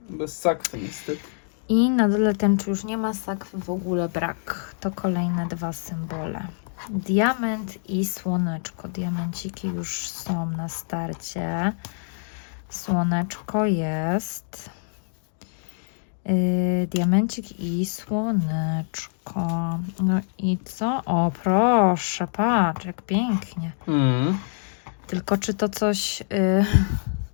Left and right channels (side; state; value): right; silent; digital silence